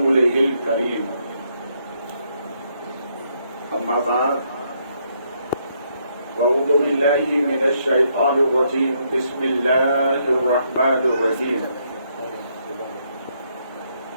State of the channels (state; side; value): inverted; both; correlation -0.74